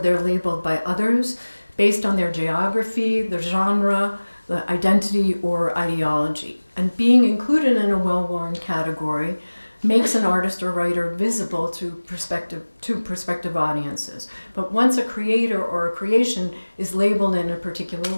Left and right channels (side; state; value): both; inverted; correlation -1.00